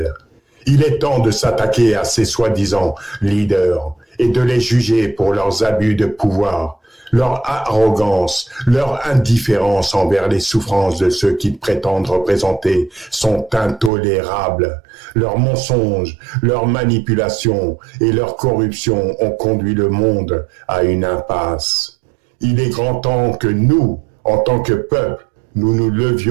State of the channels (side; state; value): left; drops out; at 13.9 s